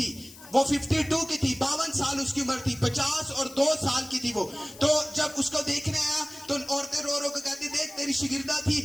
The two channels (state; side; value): noise; left; hiss, 19 dB below the sound